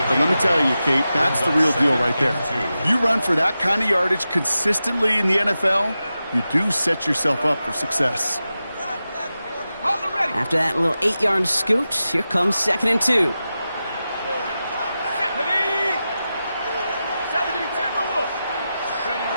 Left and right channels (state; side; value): inverted; both; correlation -0.92